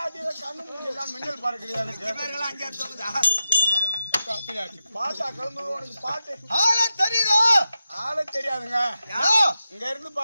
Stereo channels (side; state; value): both; inverted; correlation -0.89